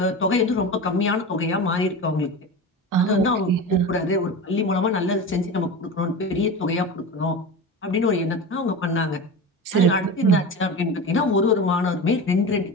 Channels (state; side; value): normal; both; correlation 0.27